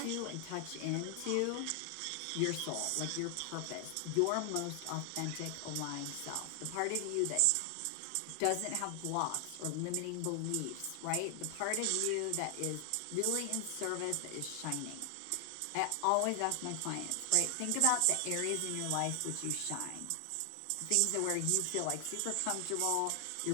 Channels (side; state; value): both; different; correlation 0.00